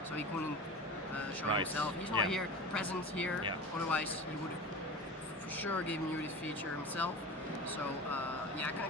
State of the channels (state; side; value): normal; both; correlation 0.32